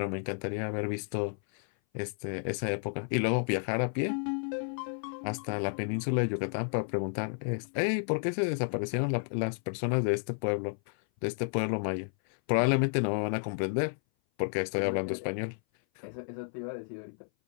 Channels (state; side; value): silent; right; 57 dB below the other